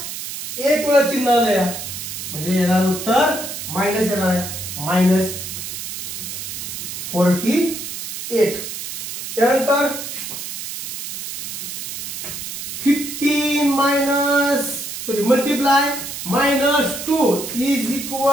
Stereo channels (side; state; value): right; noise; hiss, 7 dB below the sound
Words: 1 वेळा चिन्ह आलंय म्हणजे येणार उत्तर मायनस येणार आहे. -48. त्यानंतर 15 multiply -2 is